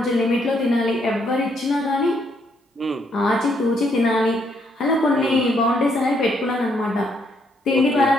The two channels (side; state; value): both; normal; correlation 0.72